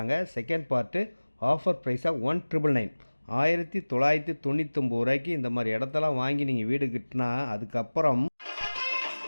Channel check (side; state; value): both; inverted; correlation -1.00